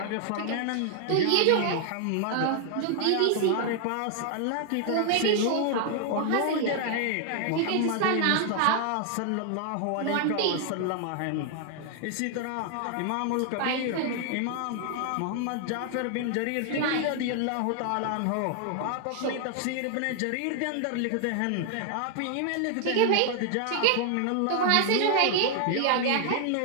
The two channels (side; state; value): both; different; correlation 0.00